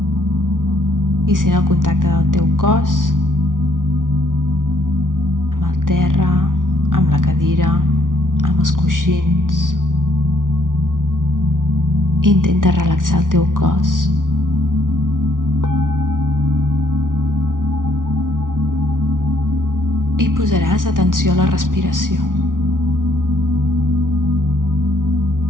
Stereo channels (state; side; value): late; left; 0.88 ms